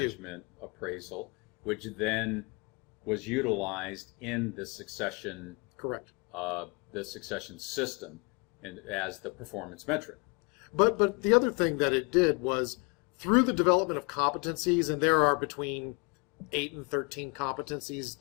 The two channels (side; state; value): right; quieter; 30.5 dB